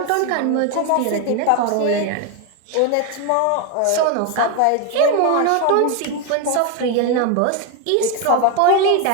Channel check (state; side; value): different; both; correlation 0.01